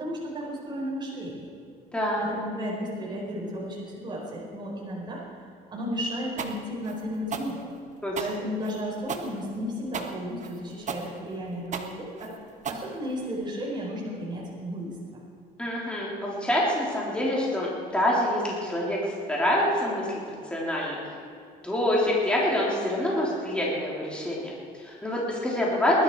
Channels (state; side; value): normal; both; correlation 0.50